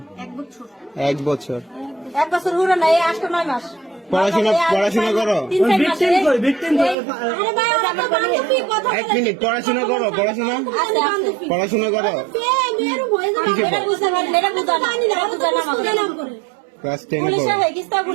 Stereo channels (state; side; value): drops out; left; at 7.0 s